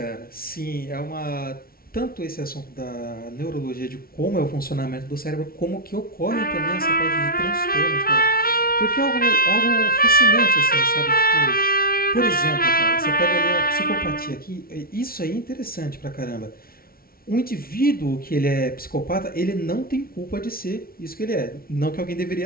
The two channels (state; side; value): late; right; 0.43 ms